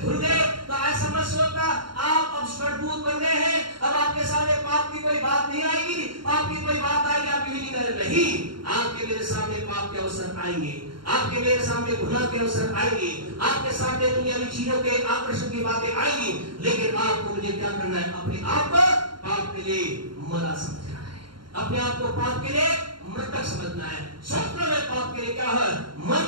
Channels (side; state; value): left; late; 0.73 ms